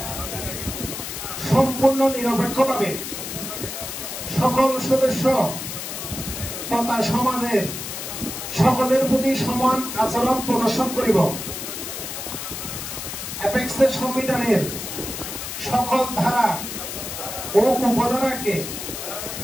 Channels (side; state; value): left; noise; hiss, 7 dB below the sound